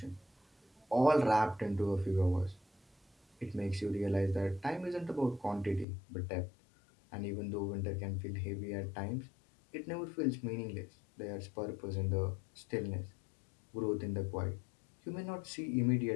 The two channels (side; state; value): right; drops out; at 5.9 s